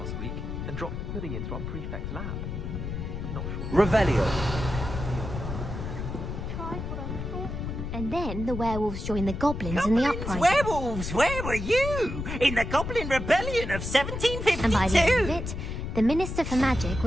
week and dropped pudding into our prefect's lab. Not sure. Revelio. Tried what I thought was And then the werewolves joined the goblins in the uprising. Werewolves, where were you? In the Goblin Rebellion of 1752? And by the end of it, the Minister for Magic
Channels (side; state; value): left; noise; rumble, 5 dB below the sound